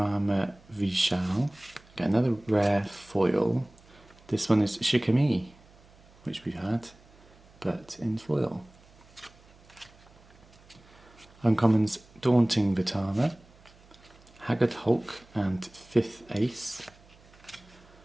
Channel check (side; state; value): right; noise; hum, 26 dB below the sound